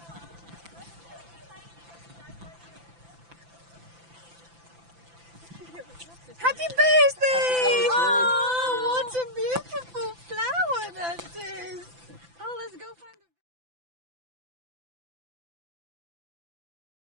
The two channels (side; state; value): left; late; 5.9 ms